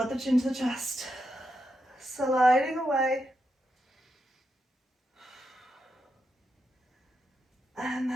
the chin to the chest. Sliding away. And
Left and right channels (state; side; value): normal; both; correlation 0.85